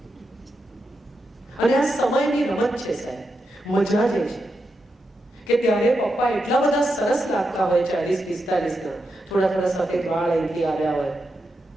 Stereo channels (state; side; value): normal; both; correlation 0.86